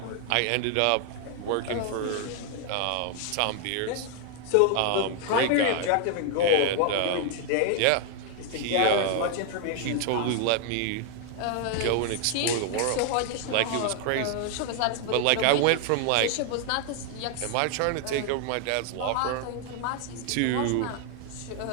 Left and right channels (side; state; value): both; different; correlation 0.00